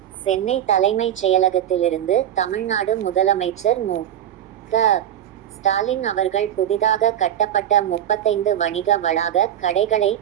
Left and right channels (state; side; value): quieter; left; 10.6 dB